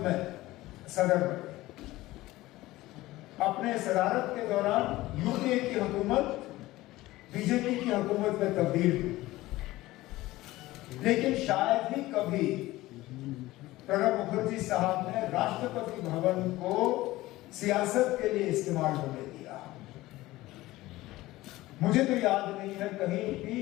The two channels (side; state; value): right; quieter; 17.8 dB